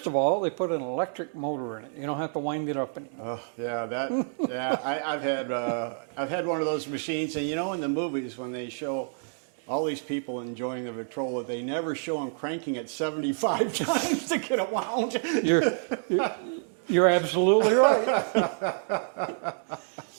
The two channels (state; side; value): silent; left; digital silence